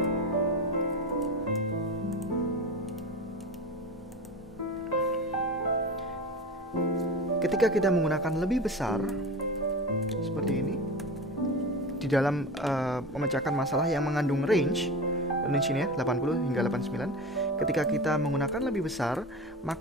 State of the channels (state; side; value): normal; both; correlation 0.29